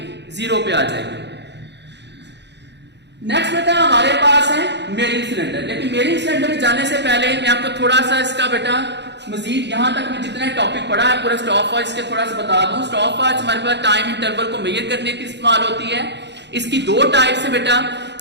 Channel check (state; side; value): late; left; 0.50 ms